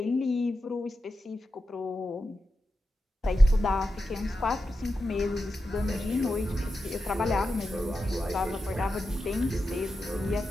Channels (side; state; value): both; normal; correlation 0.90